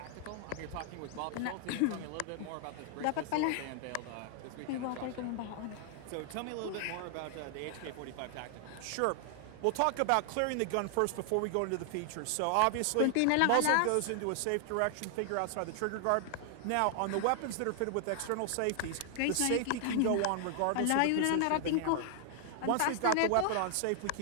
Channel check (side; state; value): both; different; correlation 0.00